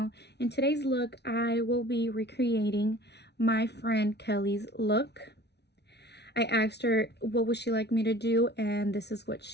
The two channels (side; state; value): right; late; 0.49 ms